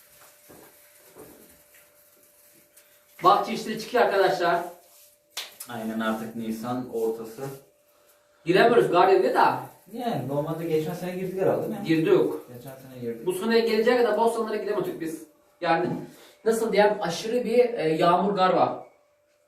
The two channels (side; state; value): both; identical; correlation 1.00